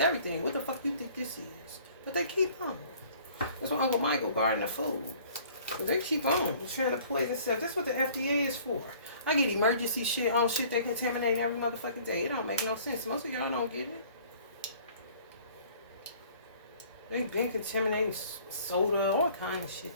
What the fuck you think this is? But they keep on. That's why Uncle Michael guarding the food. But they keep on trying to play this stuff. That's what the FDA is for. I get emergency shit on shit they contaminate every motherfucking day. It don't make no sense. Most of y'all don't get it. They've been contaminating soda, all kind of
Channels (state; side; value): inverted; both; correlation -0.53